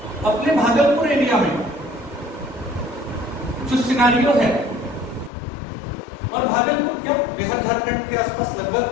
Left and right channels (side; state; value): right; drops out; at 5.3 s